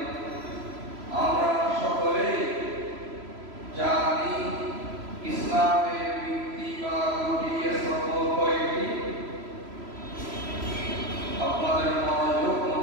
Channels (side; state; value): left; late; 3.0 ms